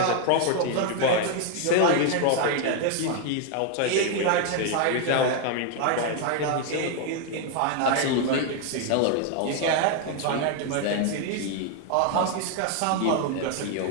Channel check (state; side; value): different; both; correlation 0.01